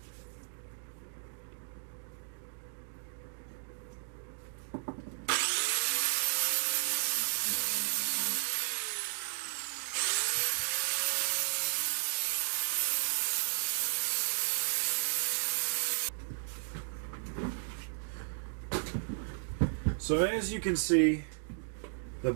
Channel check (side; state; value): left; silent; digital silence